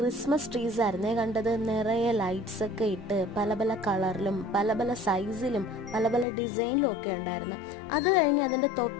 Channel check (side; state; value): right; drops out; at 6.2 s